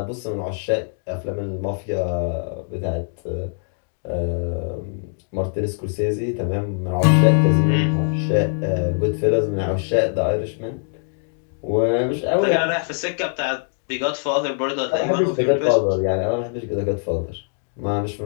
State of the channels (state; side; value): silent; right; digital silence